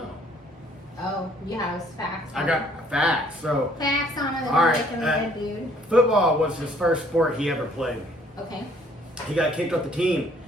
Oh, you have facts. I got facts. So facts on it. All right. Dude. Football was his first sport he ever played. Okay. He got kicked off the team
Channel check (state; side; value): normal; both; correlation 0.61